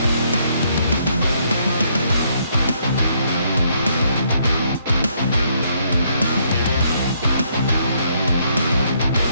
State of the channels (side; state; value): both; inverted; correlation -0.71